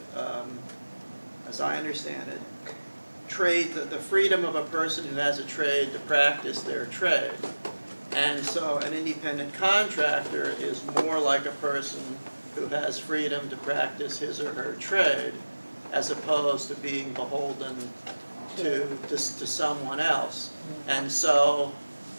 as I understand it, trade, the freedom of a person who has a trade to practice their trade. And so an independent contractor is more like a person who has freedom to practice his or her trade, as opposed to being beholden to someone else. And so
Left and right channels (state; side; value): inverted; both; correlation -1.00